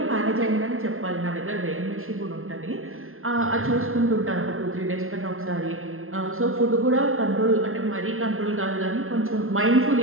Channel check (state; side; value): late; left; 0.61 ms